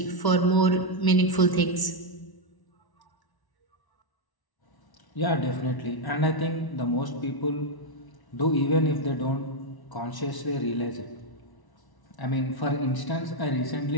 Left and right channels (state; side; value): late; right; 1.1 ms